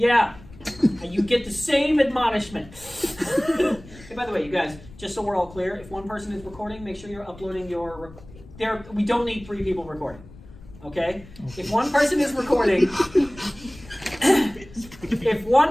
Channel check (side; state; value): left; noise; rumble, 20 dB below the sound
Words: And you get the same admonishment. Hey, by the way, you guys, just so we're all clear, if one person is recording, make sure you're uploading your... we don't need 3 people recording. Okay? If one person is recording... If